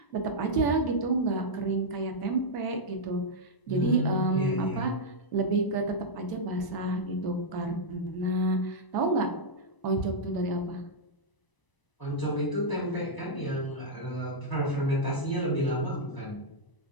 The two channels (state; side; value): late; right; 1.0 ms